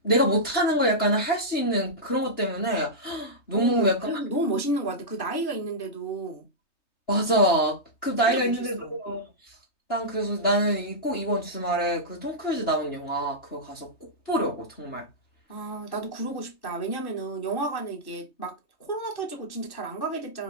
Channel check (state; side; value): late; right; 3.2 ms